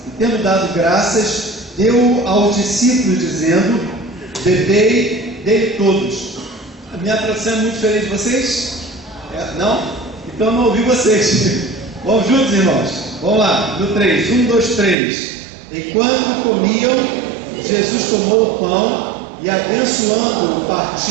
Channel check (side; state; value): left; drops out; at 15.0 s